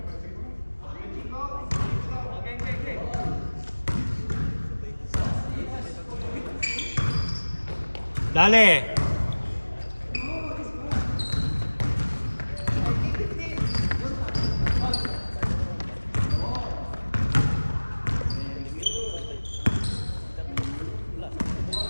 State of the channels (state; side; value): inverted; both; correlation -1.00